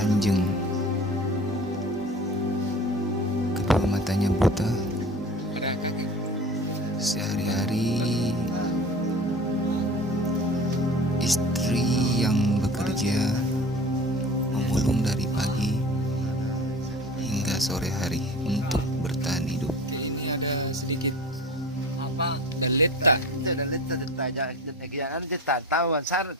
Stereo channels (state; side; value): normal; both; correlation 0.38